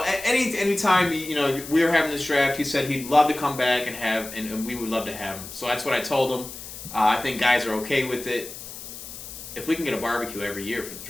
time we were having this draft, he said he'd love to come back and we would love to have him. So that's what I told him. I think guys are okay with it. If we can get a barbecue every year for the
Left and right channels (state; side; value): noise; left; hiss, 12 dB below the sound